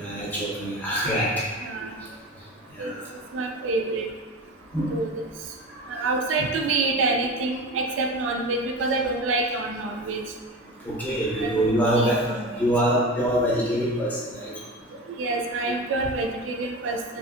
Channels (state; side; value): normal; both; correlation 0.28